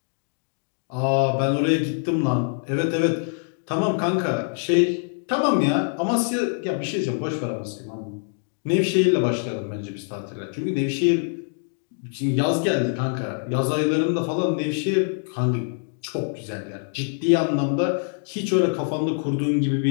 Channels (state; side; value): silent; right; 62 dB below the other